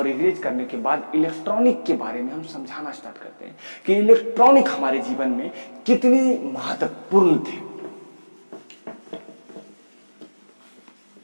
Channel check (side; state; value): both; inverted; correlation -1.00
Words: इरेज करने के बाद इलेक्ट्रॉनिक के बारे में हम समझाना स्टार्ट करते हैं कि इलेक्ट्रॉनिक हमारे जीवन में कितनी महत्वपूर्ण थे।